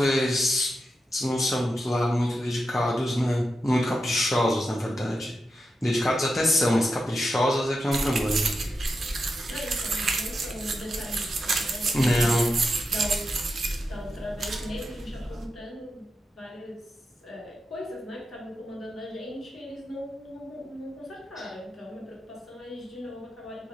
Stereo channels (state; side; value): normal; both; correlation 0.88